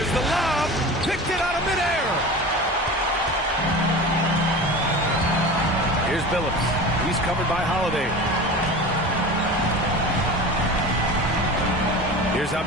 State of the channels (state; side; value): normal; both; correlation 0.33